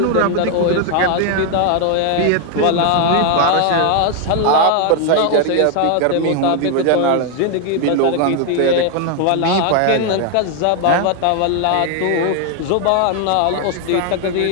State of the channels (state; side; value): different; both; correlation 0.00